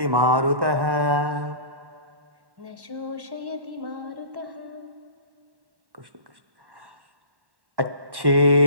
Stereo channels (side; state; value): left; late; 1.1 ms